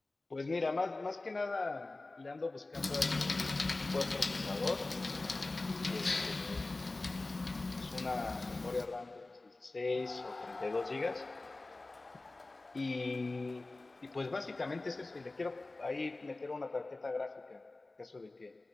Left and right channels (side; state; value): right; quieter; 3.1 dB